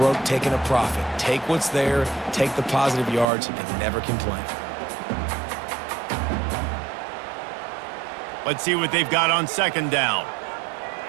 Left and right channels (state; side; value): drops out; left; at 3.2 s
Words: taking a profit. Take what's there, take the positive yards, and never complain. Let's see what they've got on second down.